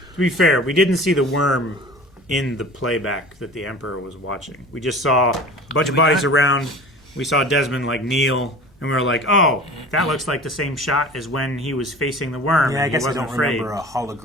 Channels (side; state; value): both; normal; correlation 0.39